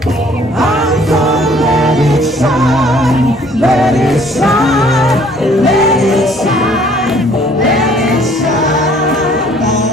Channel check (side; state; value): both; normal; correlation 0.58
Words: I'm gonna let it shine, let it shine, let it shine, let it shine.